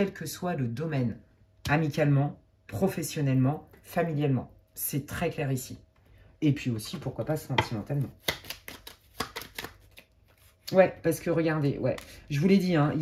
que soit le domaine, amicalement, professionnellement, familialement. C'est très clair ici. Et puis aussi, pourquoi pas sentimentalement. Ouais, parce que regardez, ouais, je vous l'ai dit, hein, il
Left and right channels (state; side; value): identical; both; correlation 1.00